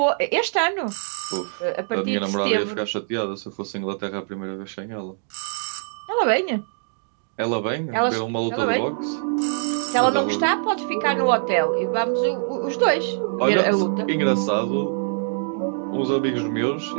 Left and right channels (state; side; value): silent; left; digital silence